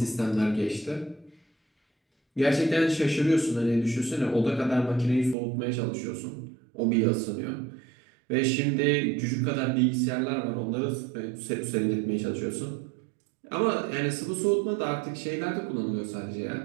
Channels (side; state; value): left; drops out; at 5.4 s